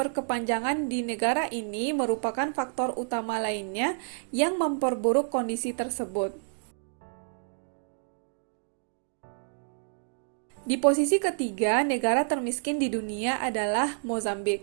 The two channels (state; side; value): silent; left; digital silence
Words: di negara ini merupakan faktor utama lainnya yang memperburuk kondisi tersebut. Di posisi ketiga, negara termiskin di dunia adalah